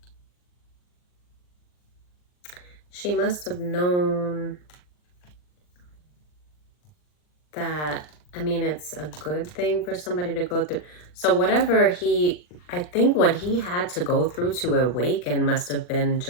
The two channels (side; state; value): right; late; 39 ms